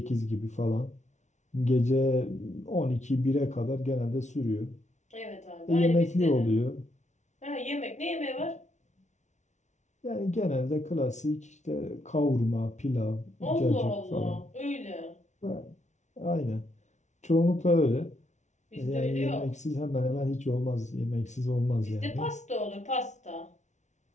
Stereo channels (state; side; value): late; right; 0.34 ms